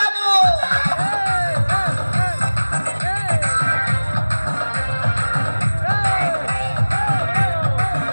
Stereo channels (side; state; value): both; inverted; correlation -1.00